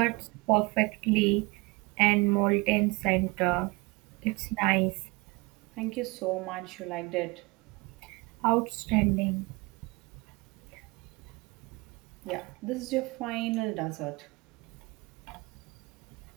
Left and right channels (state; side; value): quieter; left; 25.6 dB